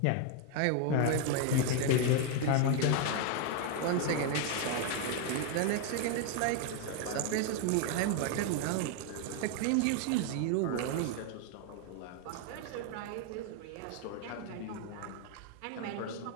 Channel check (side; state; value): both; different; correlation 0.01